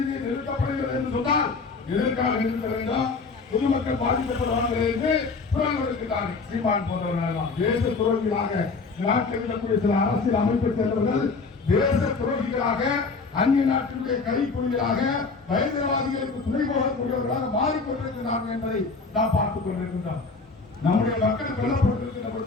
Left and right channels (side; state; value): right; quieter; 4.3 dB